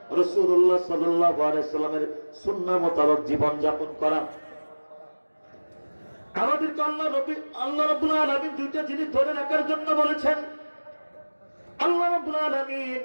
রাসূলুল্লাহ সাল্লাল্লাহু আলাইহি সাল্লামের সুন্নাহ মোতাবেক জীবন যাপন করা। আমাদেরকে আল্লাহ রাব্বুল আলামিন দুইটা জিনিস ধরে রাখার জন্য বলেছেন। আল্লাহ রাব্বুল আলামিন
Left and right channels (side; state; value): both; inverted; correlation -1.00